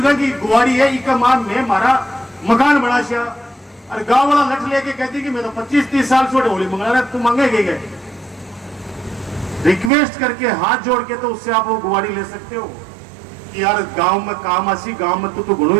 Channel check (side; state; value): left; drops out; at 9.9 s